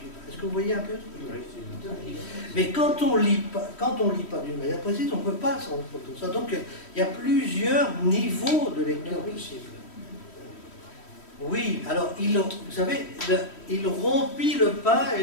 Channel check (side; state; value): right; late; 3.1 ms